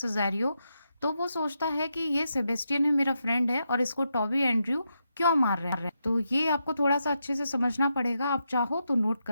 तो वो सोचता है कि ये सेबेस्टियन है, मेरा फ्रेंड है, और इसको टॉबी एंड्रयू क्यों मार रहे हैं। तो ये आपको थोड़ा सा अच्छे से समझना पड़ेगा, आप चाहो तो नोट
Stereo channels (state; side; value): inverted; both; correlation -0.84